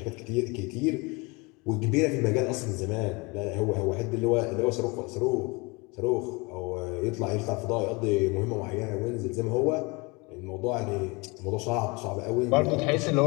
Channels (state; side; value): quieter; right; 27.2 dB